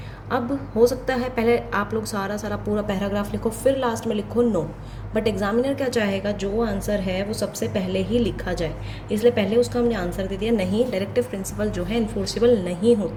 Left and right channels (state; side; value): identical; both; correlation 1.00